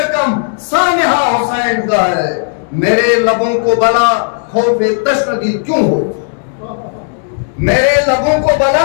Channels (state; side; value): silent; right; digital silence